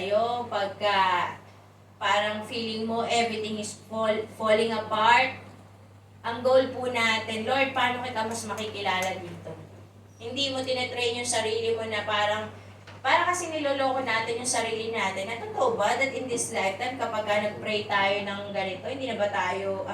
pagka parang feeling mo everything is falling apart, ang goal po natin, Lord, paano kita mas makikilala dito? Hindi mo tinetrain yung sarili mo na para kasi niloloko natin yung sarili natin. Na totoo ba that in this lifetime, kapag nag-pray tayo ng ganito, hindi na ba tayo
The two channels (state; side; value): identical; both; correlation 1.00